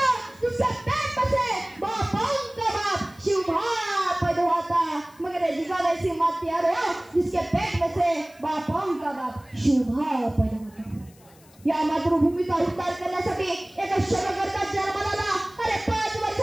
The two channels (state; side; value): noise; left; hiss, 27 dB below the sound